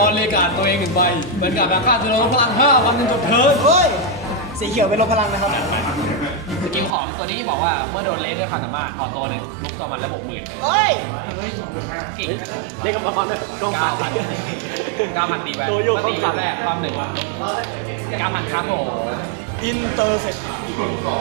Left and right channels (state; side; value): drops out; left; at 7.0 s